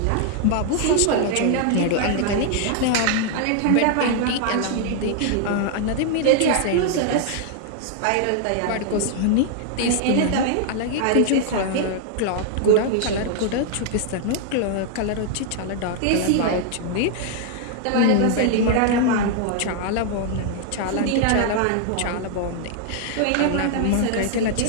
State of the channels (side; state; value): both; different; correlation 0.00